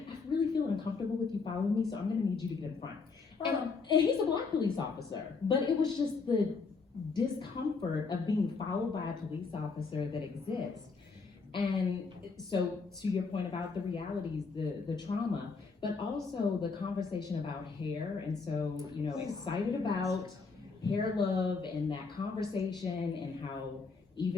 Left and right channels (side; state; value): right; quieter; 4.6 dB